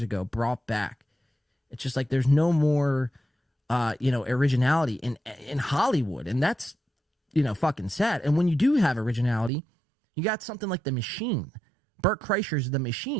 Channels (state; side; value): drops out; left; at 9.5 s